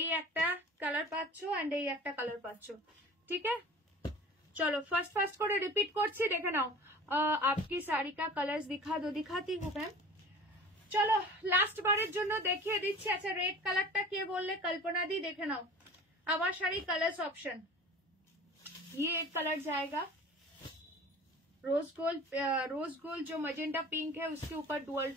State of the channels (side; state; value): both; normal; correlation 0.41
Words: একটা কালার পাচ্ছো এন্ড এই একটা কালার পাচ্ছো ঠিক আছে চলো ফার্স্ট করে রিপিট করছি দেখে নাও आपकी साड़ी का कलर्स दिखाती हूँ मैम चलो लास्ट बारेर जोन्नो देखिए दिच्छी अच्छा रेड कलरटा के बोलले कल्पना दी देखे नाओ आमार शाड़ी कलर्स ऑप्शन ये एक कलर जाएगा रोज गोल्ड जो मजेंटा पिंक है उसके ऊपर डुअल